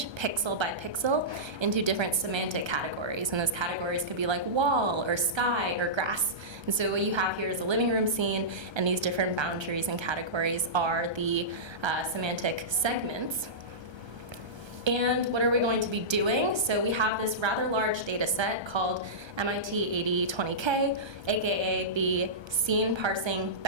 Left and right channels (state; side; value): late; left; 1.3 ms